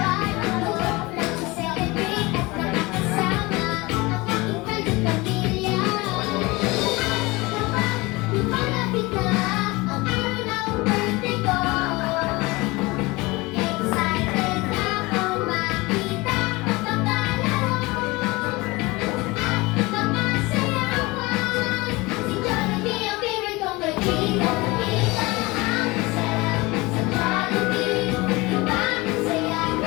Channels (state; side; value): quieter; right; 23.0 dB